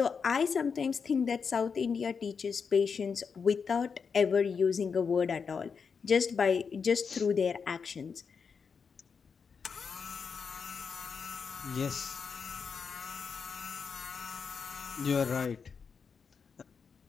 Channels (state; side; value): quieter; right; 5.9 dB